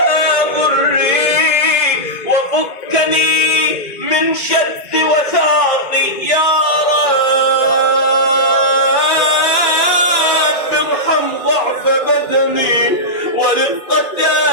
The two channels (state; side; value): late; right; 2.5 ms